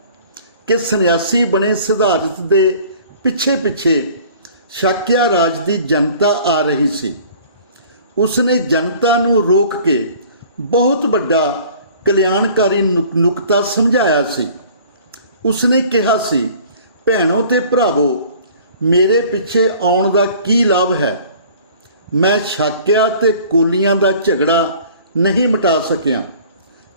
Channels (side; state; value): both; inverted; correlation -0.49